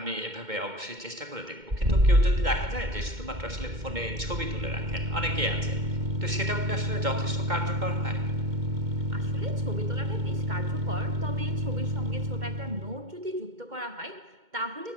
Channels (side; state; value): left; late; 2.2 ms